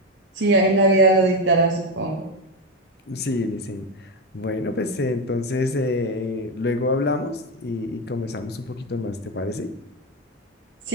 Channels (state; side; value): normal; both; correlation 0.10